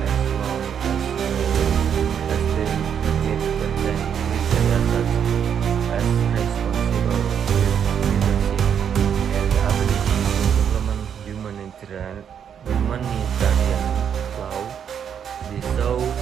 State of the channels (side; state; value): left; quieter; 8.1 dB